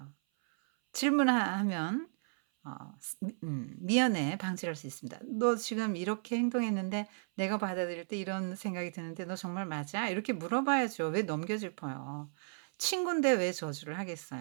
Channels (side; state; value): left; silent; 55 dB below the other